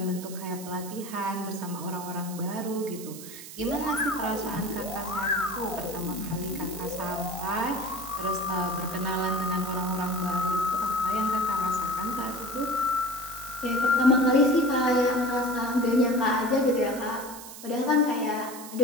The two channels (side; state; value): right; noise; hiss, 13 dB below the sound